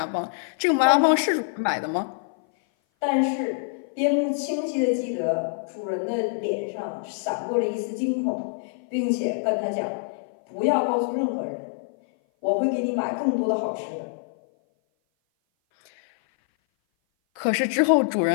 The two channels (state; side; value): silent; right; 57 dB below the other